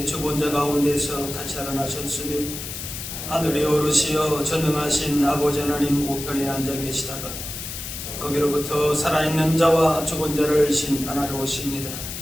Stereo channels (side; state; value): left; noise; hiss, 8 dB below the sound